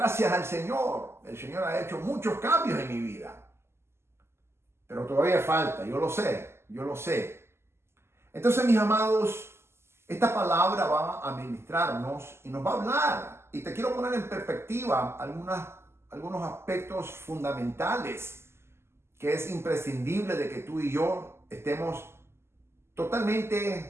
al Señor, el Señor ha hecho muchos cambios en mi vida. Pero todavía falta, yo lo sé. Entonces, mis amados, esta palabra va a ministrarnos y nos va a hablar. Y te quiero poner en perspectiva algunos aspectos fundamentales que es imprescindible de que tú y yo estemos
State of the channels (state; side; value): late; left; 0.12 ms